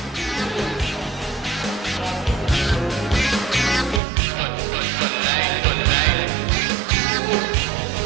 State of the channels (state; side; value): drops out; left; at 4.0 s